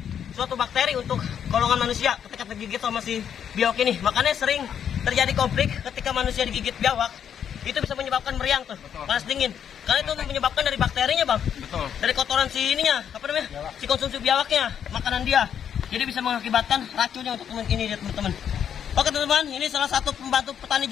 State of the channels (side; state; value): right; quieter; 8.6 dB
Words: suatu bakteri untuk golongan manusia ketika tergigit sama si biawak ini. Makanya sering terjadi konflik ketika manusia digigit biawak, itu bisa menyebabkan meriang tuh, panas dingin. Karena itu menyebabkan dari bakterinya, Bang. Betul. Dari kotoran si ininya, apa namanya? Si konsumsi biawaknya, makanan dia. Jadi bisa mengakibatkan racunnya untuk ini, teman-teman. Oke, teman-teman, ini salah satu pembantu petani